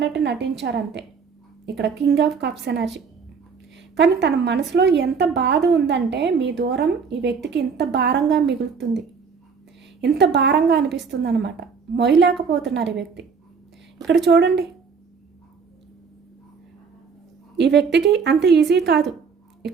నటించారంతే. ఇక్కడ కింగ్ ఆఫ్ కప్స్ ఎనర్జీ. కానీ తన మనసులో ఎంత బాధ ఉందంటే మీ దూరం ఈ వ్యక్తికి ఇంత భారంగా మిగులుతుంది, ఇంత భారంగా అనిపిస్తుంది అనమాట. మొయ్యలేకపోతున్నారు ఈ వ్యక్తి. ఇక్కడ చూడండి, ఈ వ్యక్తికి అంత ఈజీ కాదు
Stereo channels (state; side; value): quieter; left; 5.7 dB